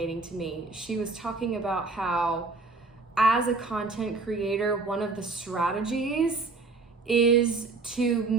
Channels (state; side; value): quieter; left; 3.8 dB